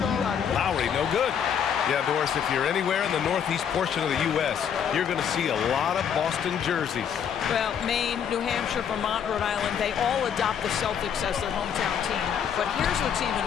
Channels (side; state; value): right; quieter; 8.1 dB